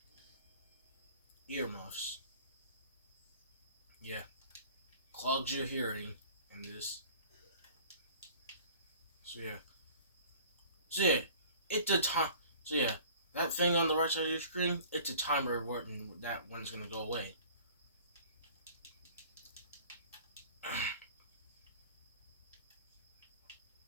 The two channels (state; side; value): inverted; both; correlation -0.47